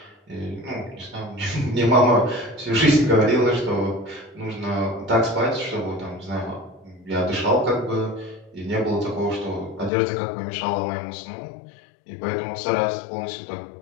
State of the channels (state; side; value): drops out; right; at 9.9 s